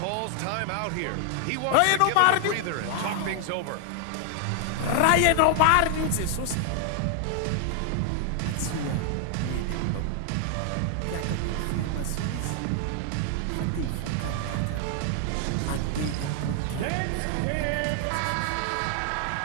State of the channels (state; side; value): different; both; correlation 0.00